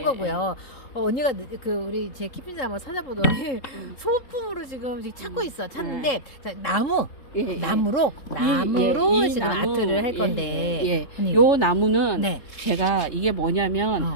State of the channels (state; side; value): late; right; 3.7 ms